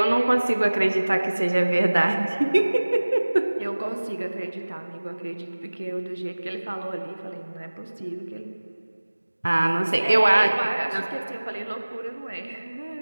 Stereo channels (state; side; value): inverted; both; correlation -1.00